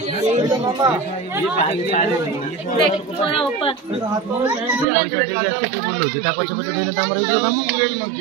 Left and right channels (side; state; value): left; drops out; at 4.9 s